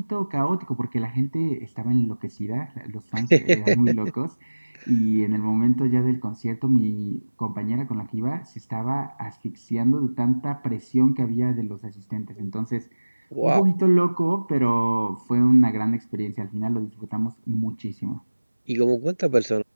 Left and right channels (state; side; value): inverted; both; correlation -1.00